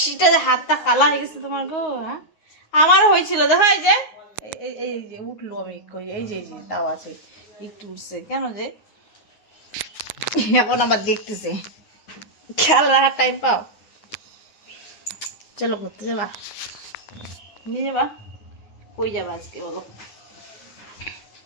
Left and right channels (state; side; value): late; right; 9.5 ms